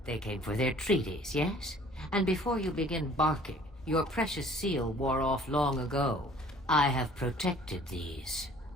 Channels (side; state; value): both; normal; correlation 0.53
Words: they came for their treaties, yes? And before you begin barking, your precious seal wore off long ago. I have protected these.